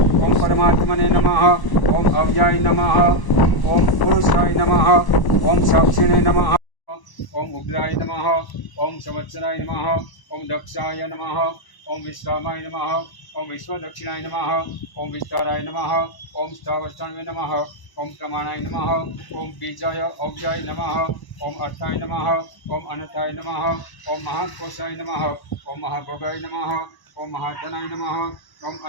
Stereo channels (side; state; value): right; late; 1.0 ms